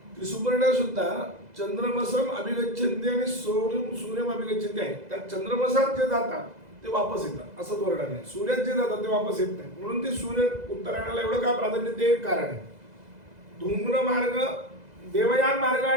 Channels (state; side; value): late; left; 2.0 ms